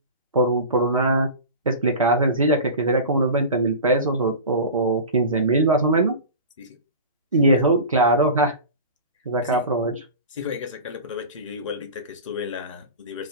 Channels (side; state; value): both; inverted; correlation -0.32